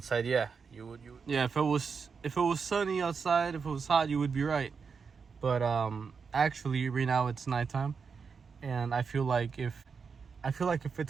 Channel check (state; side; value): quieter; left; 5.6 dB